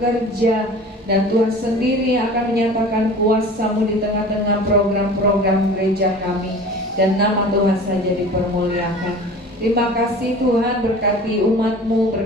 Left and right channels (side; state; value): both; normal; correlation 0.41